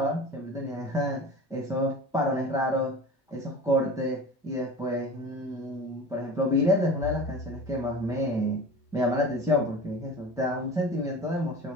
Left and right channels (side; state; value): both; normal; correlation 0.36